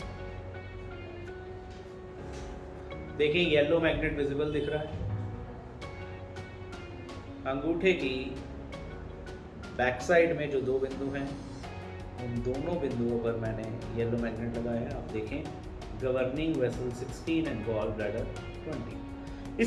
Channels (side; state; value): both; identical; correlation 1.00